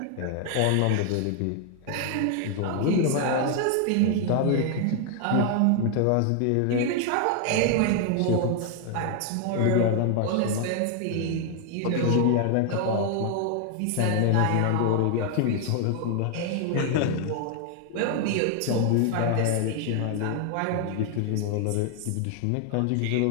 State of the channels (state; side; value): different; both; correlation 0.00